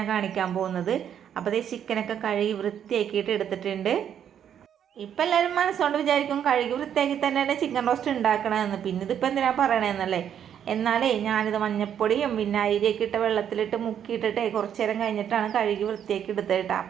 കാണിക്കാൻ പോകുന്നത്. അപ്പോൾ അതേ ചിക്കനൊക്കെ കഴുകി വൃത്തിയാക്കിയിട്ട് എടുത്തിട്ടുണ്ട്. ഇപ്പം എല്ലാവരും മനസ്സുകൊണ്ട് വിചാരിക്കും കഴുകി വൃത്തിയാക്കി തന്നെയാണ് ചിക്കൻ റോസ്റ്റ് ഉണ്ടാക്കണമെന്ന്. പിന്നെ ഇതിപ്പോൾ എന്തിനാ പറയണമെന്നല്ലേ. എന്നാലേ ഞാനിത് മഞ്ഞപ്പൊടിയും പിന്നെ അരിയൊക്കെ ഇട്ട വെള്ളത്തിലിട്ട് മുക്കിയിട്ടിട്ടേ കുറച്ച് നേരം കഴിഞ്ഞിട്ടാണ് കഴുകി വൃത്തിയാക്കി എടുത്തിട്ട്.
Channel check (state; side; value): quieter; left; 9.2 dB